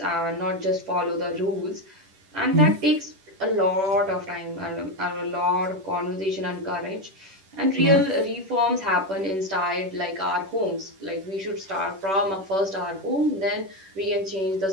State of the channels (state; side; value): late; left; 10 ms